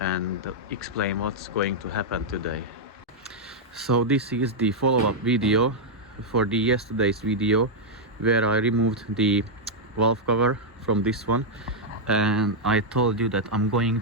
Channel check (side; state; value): both; normal; correlation -0.04